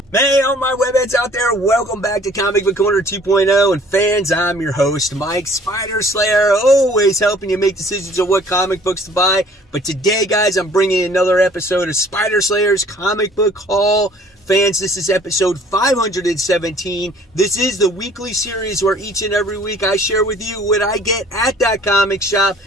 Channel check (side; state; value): both; normal; correlation 0.54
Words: Hey, all my webheads out there, welcome back to Comic Book Corner 2.0, and fans, I'm your host, Mike Spider Slayer, always helping you make decisions on what comic books to buy. But today, guys, I'm bringing another episode of Spider Slayer's Comic Book Haul. Fans, this is episode 517. This is the weekly series where each and every week I share with you what I get at that comic shop,